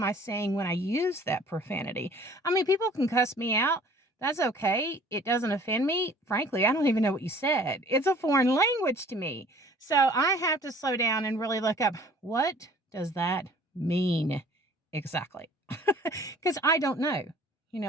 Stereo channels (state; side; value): normal; both; correlation 0.52